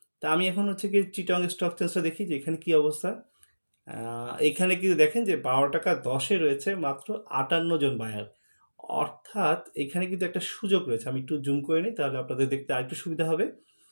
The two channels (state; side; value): inverted; both; correlation -1.00